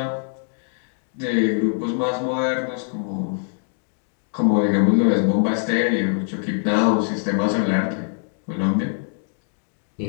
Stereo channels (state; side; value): silent; right; digital silence